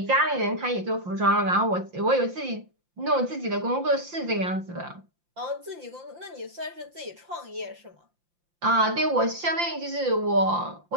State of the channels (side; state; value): left; late; 5.8 ms